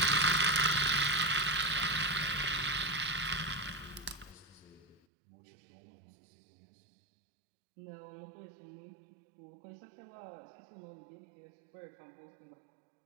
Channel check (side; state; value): left; drops out; at 5.1 s